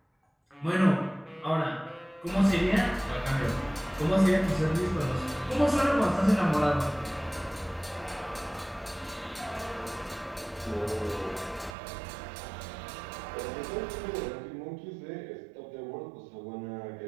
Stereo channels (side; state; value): left; drops out; at 11.8 s